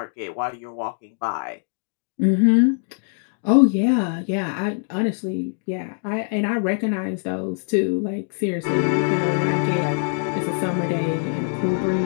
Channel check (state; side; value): silent; right; 59 dB below the other